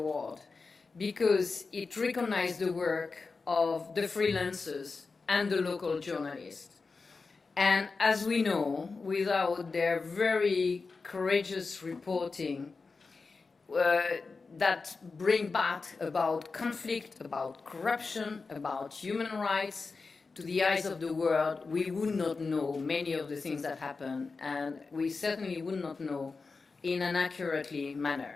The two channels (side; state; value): right; quieter; 4.3 dB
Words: because it recognizes the work of the freelancers and the local journalists. And as we know, without their very courageous reporting that bring back about conflict, about corruption, about human rights to the eyes of the world, we would not know many of the things that happen, and we certainly would not know in an accurately manner.